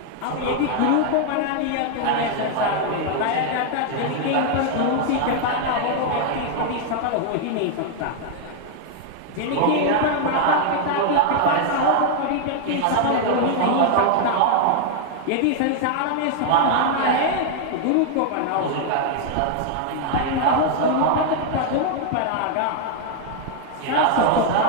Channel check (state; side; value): different; both; correlation 0.00